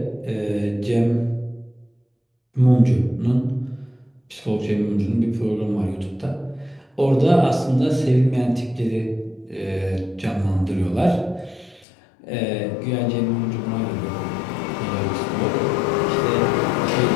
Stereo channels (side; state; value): right; drops out; at 11.9 s